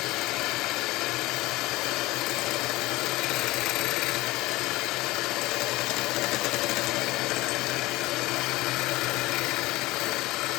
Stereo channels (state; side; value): quieter; right; 19.7 dB